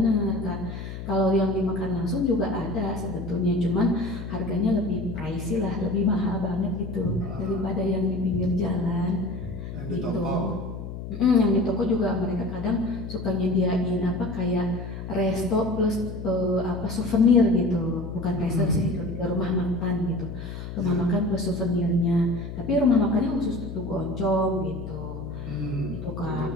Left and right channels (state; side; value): noise; left; hum, 9 dB below the sound